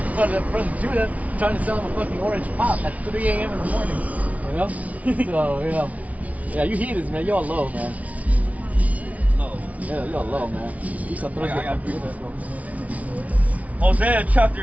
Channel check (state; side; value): late; left; 0.069 ms